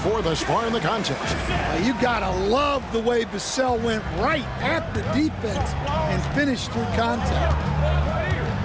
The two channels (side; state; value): both; identical; correlation 1.00